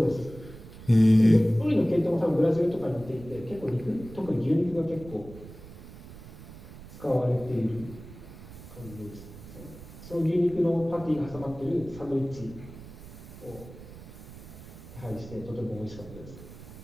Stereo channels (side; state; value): right; noise; rumble, 16 dB below the sound